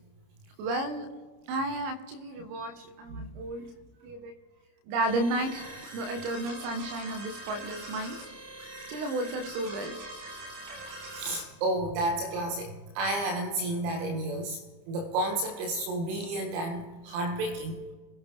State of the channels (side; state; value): left; late; 30 ms